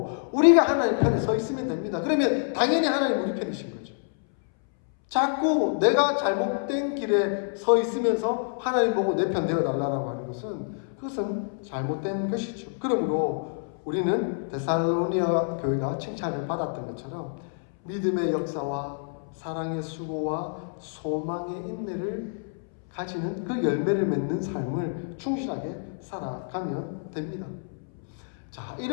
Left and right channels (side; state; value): right; silent; 60 dB below the other